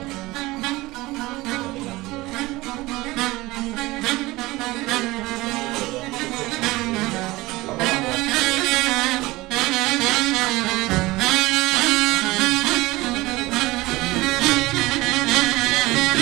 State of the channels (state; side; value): quieter; left; 20.1 dB